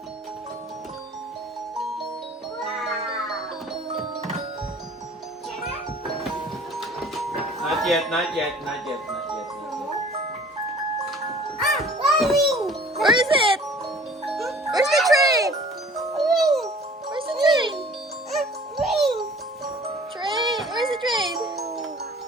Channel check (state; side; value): normal; both; correlation 0.49